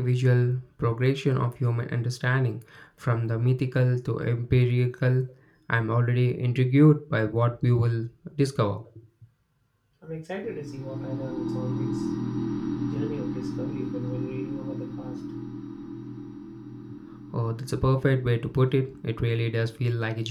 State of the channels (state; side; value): identical; both; correlation 1.00